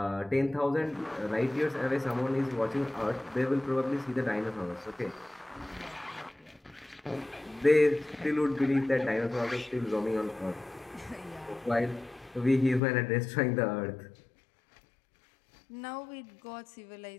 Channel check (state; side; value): drops out; right; at 12.8 s